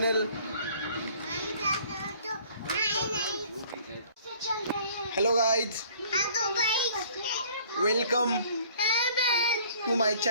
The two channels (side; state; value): both; inverted; correlation -0.55